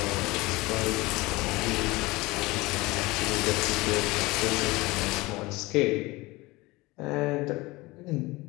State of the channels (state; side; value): quieter; right; 21.7 dB